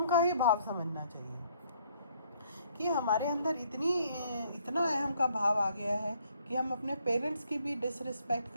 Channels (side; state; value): both; inverted; correlation -0.65